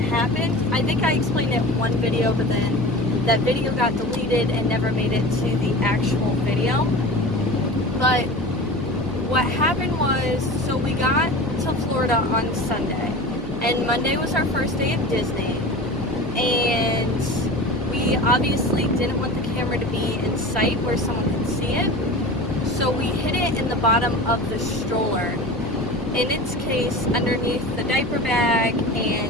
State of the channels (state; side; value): normal; both; correlation 0.34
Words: I think I explained it in one video, but then that video got deleted and never made it to the actual video. But what happened was, so we got to Florida on Sunday, and Monday was our first day at Disney, and we obviously didn't want the camera to be in sight where someone could see it, so we hid it in the bottom of the stroller. In its case, underneath the diaper bag